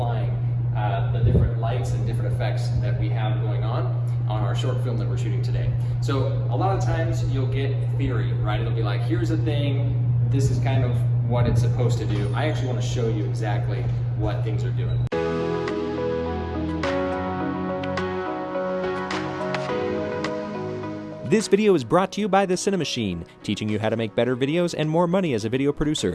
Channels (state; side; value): identical; both; correlation 1.00